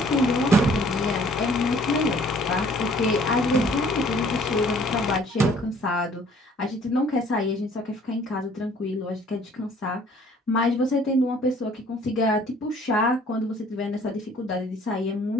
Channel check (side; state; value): both; normal; correlation 0.57